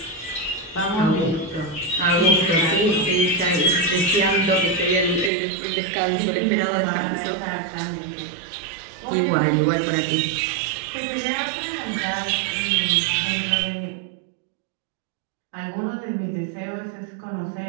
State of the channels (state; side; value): drops out; left; at 5.3 s